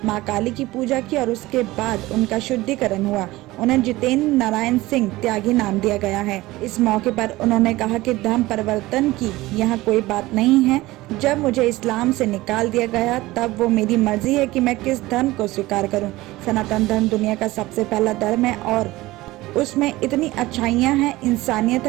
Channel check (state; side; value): quieter; left; 18.7 dB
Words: मां काली की पूजा की और उसके बाद उनका शुद्धिकरण हुआ। उन्हें जितेंद्र नारायण सिंह त्यागी नाम दिया गया है। इस मौके पर उन्होंने कहा कि धर्म परिवर्तन की यहाँ कोई बात नहीं है। जब मुझे इस्लाम से निकाल दिया गया तब वो मेरी मर्जी है कि मैं किस धर्म को स्वीकार करूँ। सनातन धर्म दुनिया का सबसे पहला धर्म है और उसमें इतनी अच्छाइयाँ हैं, इंसानियत